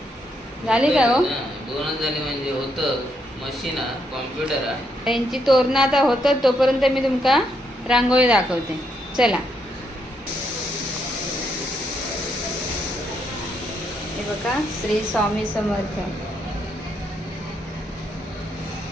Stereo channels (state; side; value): normal; both; correlation 0.77